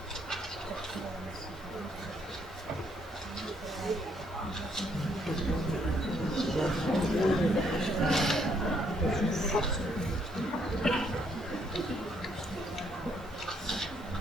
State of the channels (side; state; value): both; normal; correlation 0.70